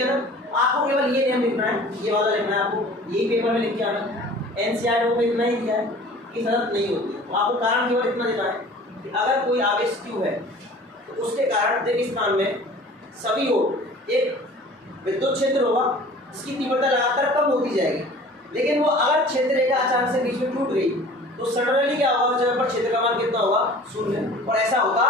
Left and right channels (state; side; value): normal; both; correlation 0.45